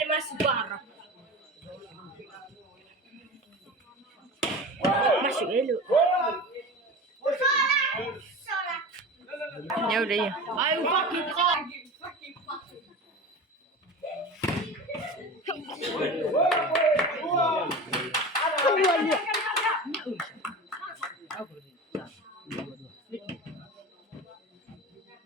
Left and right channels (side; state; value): both; normal; correlation 0.31